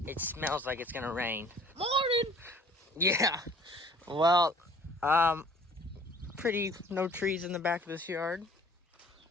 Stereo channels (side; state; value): both; normal; correlation 0.52